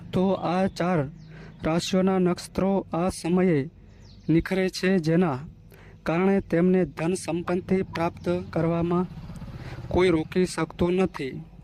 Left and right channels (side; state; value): both; identical; correlation 1.00